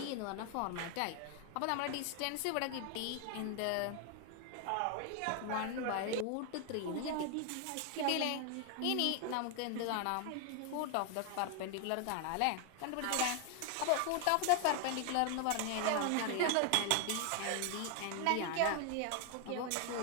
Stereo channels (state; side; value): different; both; correlation 0.00